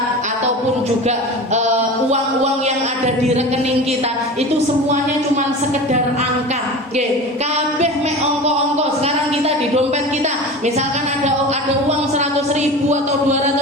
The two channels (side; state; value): both; normal; correlation 0.32